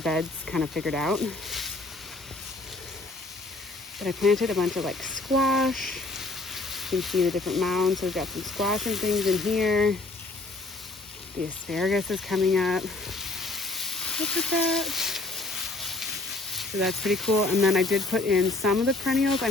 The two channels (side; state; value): right; quieter; 3.1 dB